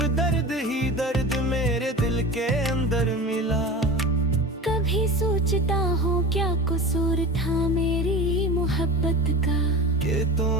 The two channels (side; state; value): both; normal; correlation 0.33